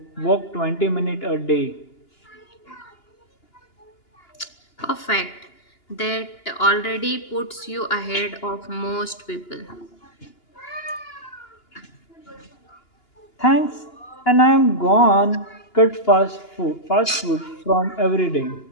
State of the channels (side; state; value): right; late; 2.9 ms